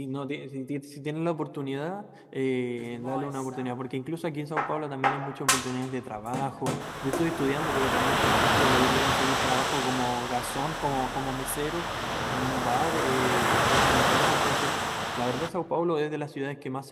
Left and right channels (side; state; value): both; identical; correlation 1.00